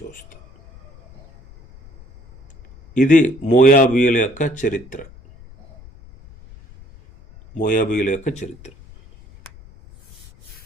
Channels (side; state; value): left; noise; rumble, 23 dB below the sound